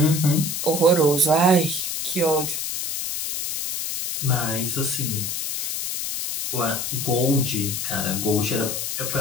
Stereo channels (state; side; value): noise; left; hiss, 3 dB below the sound